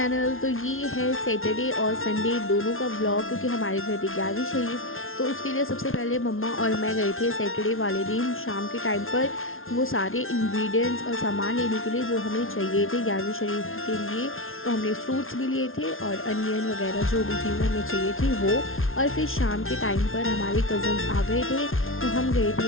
तो ये है सैटरडे और संडे दोनों का व्लॉग, क्योंकि हमारे घर थी 11वीं शरीफ। तो उसके लिए सबसे पहले मम्मा और मैं गए थे सैटरडे वाले दिन शाम के टाइम पर वो सारे इंग्रेडिएंट्स और सामान लेने के लिए जो हमें चाहिए थे 11वीं शरीफ के लिए। तो हमने फ्रूट्स भी लिए थे और अनियन वगैरह जो भी चीज़ें हमें चाहिए थी वो। और फिर शाम के टाइम पर हमारे कज़न्स आ गए थे, तो हम गए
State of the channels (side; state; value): right; late; 0.60 ms